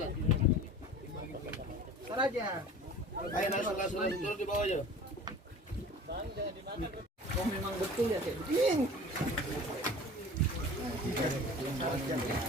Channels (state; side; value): normal; both; correlation 0.42